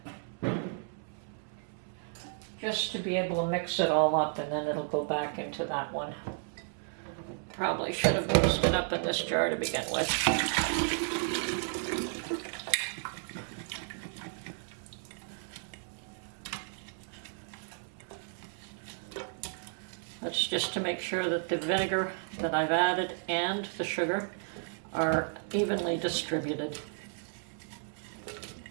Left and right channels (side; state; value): left; silent; 56 dB below the other